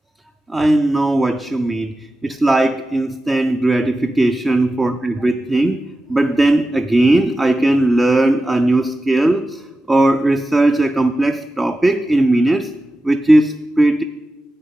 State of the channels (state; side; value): normal; both; correlation 0.93